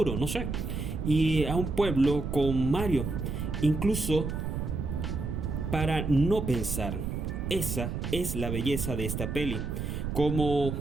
no sé. Y a un pueblo con Mario. Incluso para no pensar. Esa es la belleza de esta peli. Como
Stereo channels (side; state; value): right; noise; rumble, 3 dB below the sound